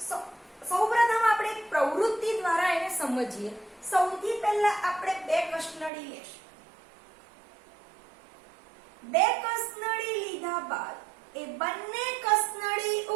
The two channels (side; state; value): left; drops out; at 5.9 s